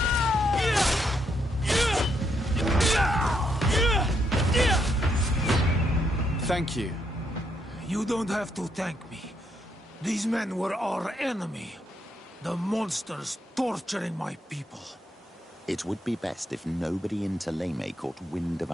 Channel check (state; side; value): normal; both; correlation 0.76